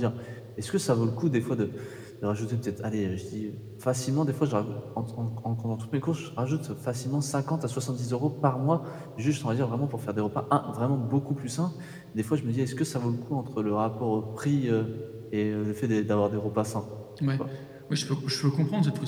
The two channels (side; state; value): both; identical; correlation 1.00